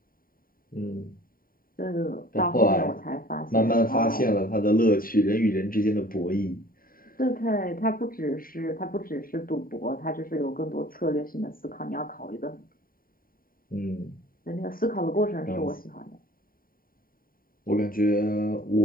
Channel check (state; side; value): late; right; 0.41 ms